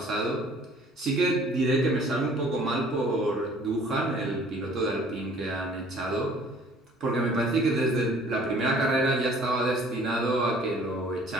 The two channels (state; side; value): normal; both; correlation 0.54